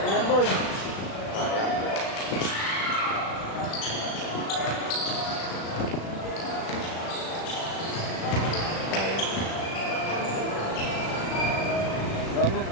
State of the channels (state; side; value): late; right; 36 ms